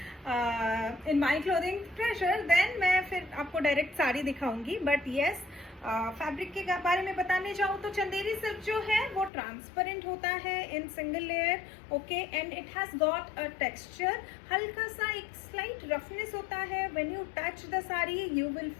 in my clothing treasure, then मैं फिर आपको डायरेक्ट साड़ी दिखाऊंगी. बट येस, फैब्रिक के बारे में बताने जाऊँ तो चंदेरी सिल्क जो है वो ट्रांसपेरेंट होता है in single layer. Okay, and it has got a texture. हल्का सा एक स्लाइट रफनेस होता है. When you touch the sari you will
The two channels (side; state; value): right; drops out; at 9.3 s